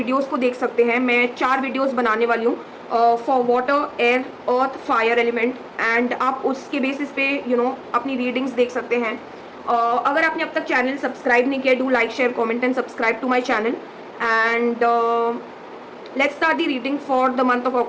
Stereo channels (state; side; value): identical; both; correlation 1.00